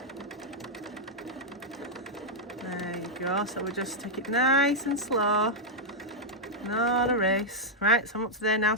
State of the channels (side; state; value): both; normal; correlation -0.04